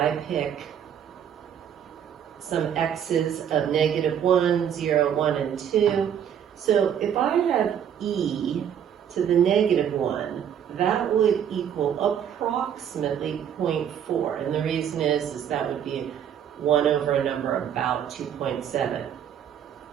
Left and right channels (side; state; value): left; quieter; 9.0 dB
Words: pick some x's of -1, 0, 1, and 2, so if I have e to the -1, that would equal approximately 0.4. And the reason is that would be 1 over a number about 2.7.